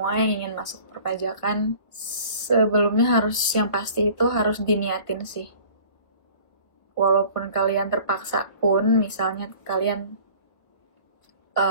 yang ingin masuk perpajakan, sebelumnya yang pasti itu harus diniatin sih. Walaupun kalian terpaksa pun, misalnya kalian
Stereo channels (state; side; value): late; right; 1.4 ms